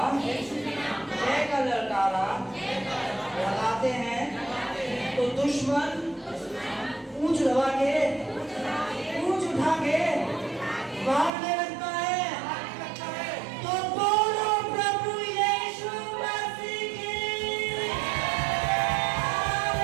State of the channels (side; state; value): left; drops out; at 11.3 s